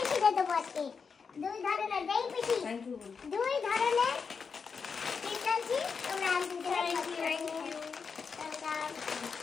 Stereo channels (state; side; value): quieter; right; 5.6 dB